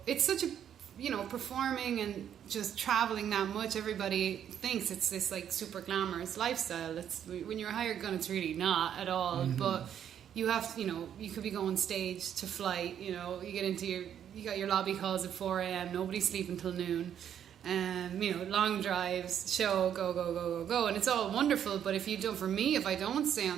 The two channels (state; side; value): quieter; left; 9.4 dB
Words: it's such a performing and just traveling that much, everybody thinks it's this like super glamorous lifestyle. When you're a hired gun, it's really not at all. But you have to, you could be going stage to flight, you get into you got your lobby calls at 4 a.m, nobody's sleeping till noon, long drives, show, go, and it's all wonderful. But if I don't stay